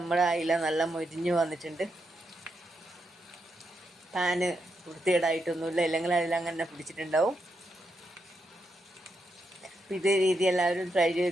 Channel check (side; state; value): both; normal; correlation 0.83